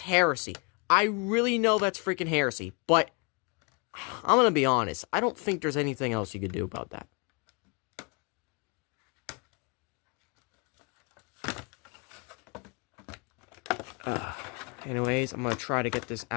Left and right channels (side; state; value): right; quieter; 33.3 dB